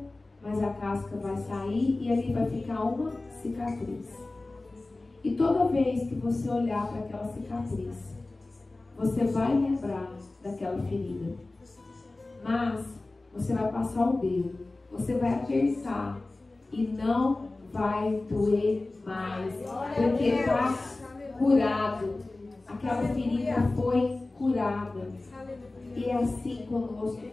mas a casca vai sair e ali vai ficar uma cicatriz. E toda vez que você olhar para aquela cicatriz, você vai lembrar daquela ferida. Mas você vai passar o dedo, você vai apertar e não vai doer mais, porque está curado. Aquela ferida foi curada. E é assim conosco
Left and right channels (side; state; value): right; quieter; 3.1 dB